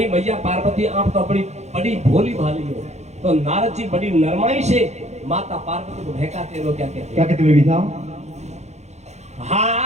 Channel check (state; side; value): late; left; 0.32 ms